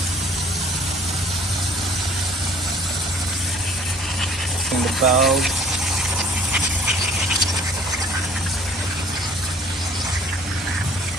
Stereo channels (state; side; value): normal; both; correlation 0.51